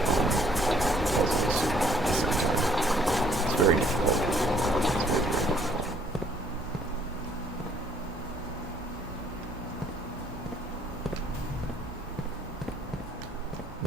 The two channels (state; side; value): normal; both; correlation 0.63